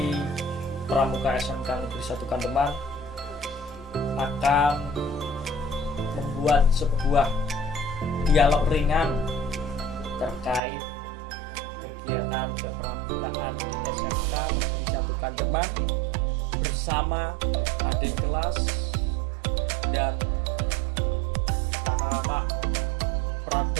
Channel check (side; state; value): left; drops out; at 10.6 s